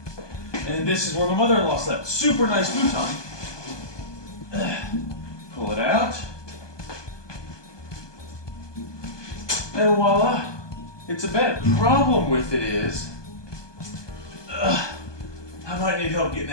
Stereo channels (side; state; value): right; late; 1.2 ms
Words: And this is where my mother-in-law slept. Super nice futon. Pull it out. And voila, it's a bed. The problem with it is, I might need help getting